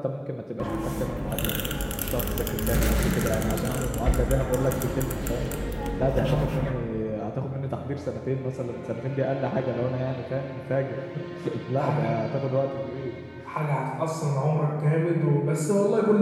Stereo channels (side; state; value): both; identical; correlation 1.00